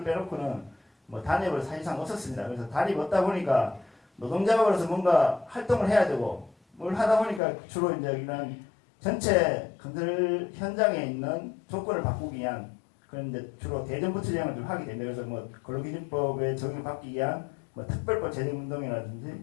빼놓고는 뭐 단협을 사실상 없었습니다. 그래서 단협이 없다 보니까 노동자로서 뭔가 활동을 해야 되고 뭘 하다 보니까 주로 이제 이런 전체 건설 현장에 있는 조건을 바꾸기 위한 그런 이제 주로 대정부 투쟁을 좀 하게 됩니다. 그래서 뭐 근로기준법에 적용을 받기 위한 뭐 특별법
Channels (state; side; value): drops out; right; at 7.4 s